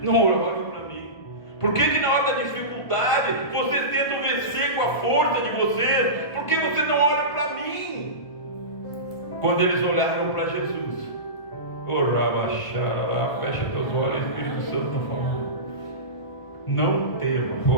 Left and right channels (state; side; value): late; right; 1.4 ms